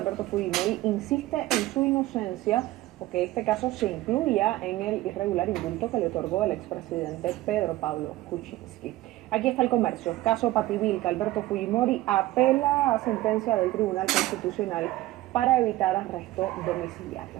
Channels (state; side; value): quieter; left; 16.9 dB